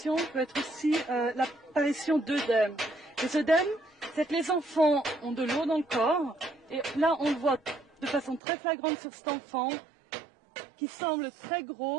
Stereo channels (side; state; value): left; drops out; at 8.4 s